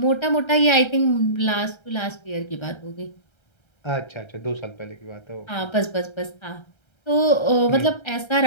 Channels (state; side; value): late; right; 1.3 ms